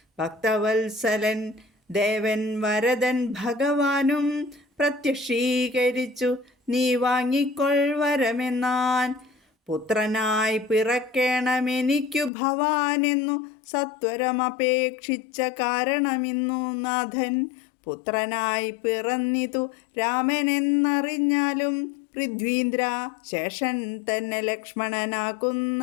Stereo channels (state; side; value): drops out; right; at 12.3 s